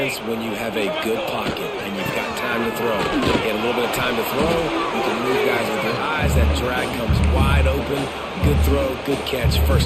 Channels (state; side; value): identical; both; correlation 1.00